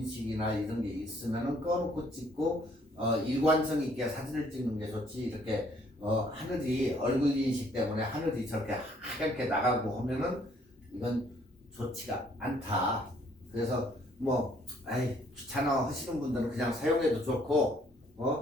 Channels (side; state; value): both; normal; correlation 0.64